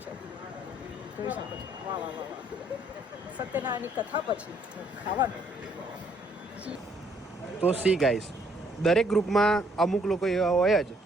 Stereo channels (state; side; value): normal; both; correlation 0.66